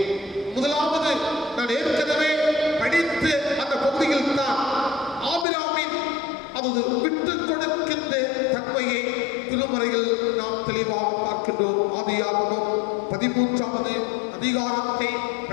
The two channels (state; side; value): drops out; right; at 5.5 s